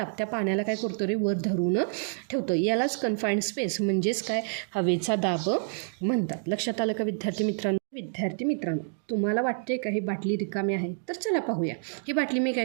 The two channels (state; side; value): silent; left; 59 dB below the other